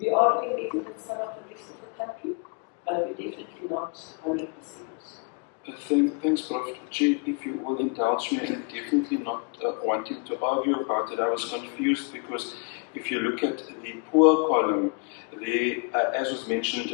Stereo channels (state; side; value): quieter; right; 35.5 dB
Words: are doing better than some of the rest of the country, but we're definitely not 100%. Thanks, Prof. Chair, if you will indulge me, and definitely not wanting to argue about it. I was confused because if you look at the poor column, as was